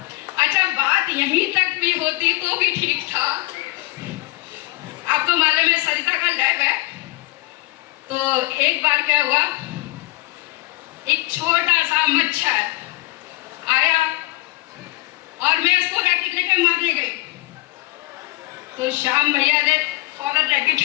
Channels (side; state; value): right; quieter; 21.8 dB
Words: अच्छा, बात यहीं तक भी होती तो भी ठीक था। आप तो मालूम है सरिता का लैब है। तो एक बार क्या हुआ, एक छोटा सा मच्छर आया और मैं उसको रैकेट लेकर मारने गई। तो श्याम भैया ने फौरन